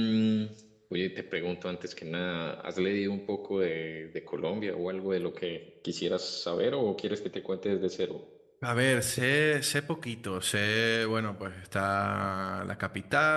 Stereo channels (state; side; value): identical; both; correlation 1.00